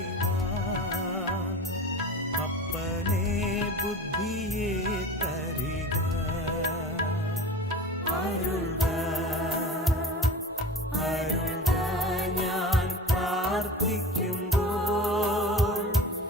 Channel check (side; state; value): both; normal; correlation 0.35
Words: അപ്പനെ ബുദ്ധിയെ തരിക. അരുൾക അരുൾക ഞാൻ പ്രാർത്ഥിക്കുമ്പോൾ,